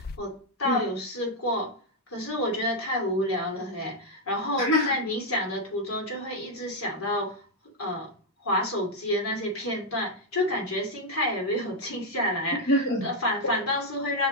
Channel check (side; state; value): both; normal; correlation 0.00